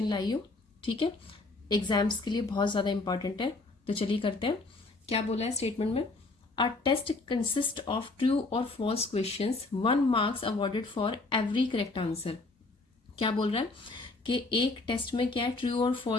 लाई हूँ। ठीक है, एग्जाम्स के लिए बहुत ज़्यादा इंपॉर्टेंट है। तो चलिए करते हैं। क्या बोला है स्टेटमेंट में? A test consist of true और false questions, 1 marks awarded for every correct answer. क्या बोल रहा है कि एक टेस्ट में क्या है, ट्रू और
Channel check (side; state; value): right; quieter; 3.4 dB